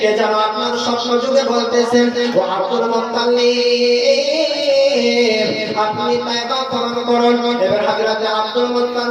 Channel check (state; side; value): identical; both; correlation 1.00